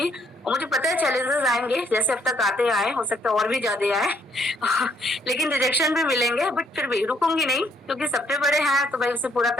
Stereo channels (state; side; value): normal; both; correlation 0.68